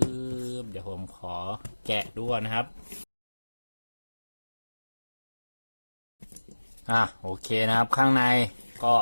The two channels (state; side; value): inverted; both; correlation -1.00